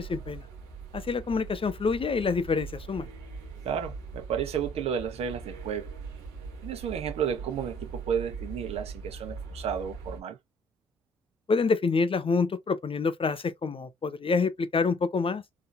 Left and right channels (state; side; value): normal; both; correlation 0.58